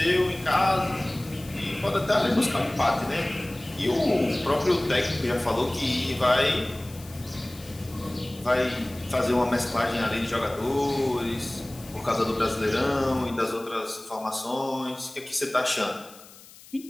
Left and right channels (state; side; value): noise; left; hiss, 21 dB below the sound